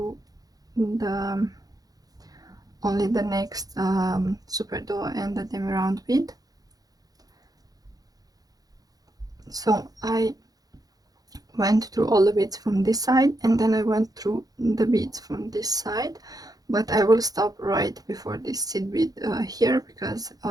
only the next Superduo and the demi round bead. So I went through all the beads from this side, and then I went through the beads from this side, but I will stop right before this seed bead here, because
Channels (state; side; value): late; left; 0.18 ms